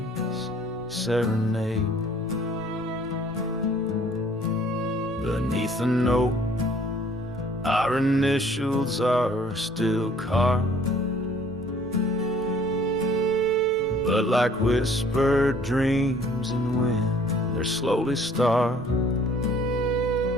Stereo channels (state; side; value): noise; left; rumble, 23 dB below the sound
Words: serenade. Beneath the note, our initials are still carved, but like whispered dreams in wind, they're slowly starved.